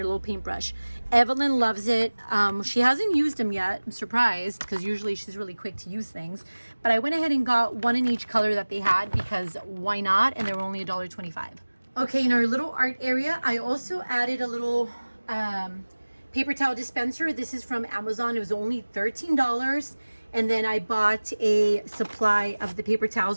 little paintbrush. Evelyn loves it. She hasn't used them yet. I'm surprised because usually she's really quick to use things. But I went ahead and got one in each color that they had because why not? And they were only $1.25. Okay, in our little art area, I also added a little paper towel dispenser. This is from Amazon. It was only $13. And then I bought a supply of the paper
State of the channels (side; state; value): both; inverted; correlation -1.00